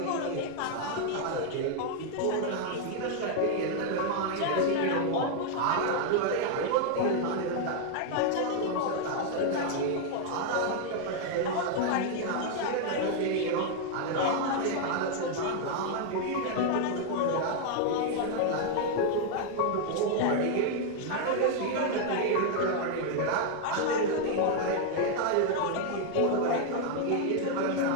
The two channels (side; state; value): both; different; correlation 0.00